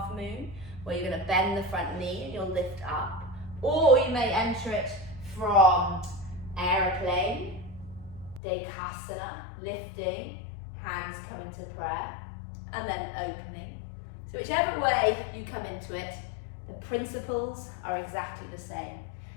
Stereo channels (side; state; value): right; drops out; at 8.4 s